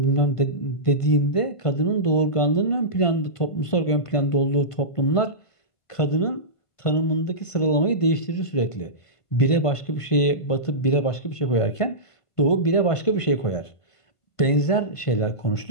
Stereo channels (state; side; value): late; right; 1.5 ms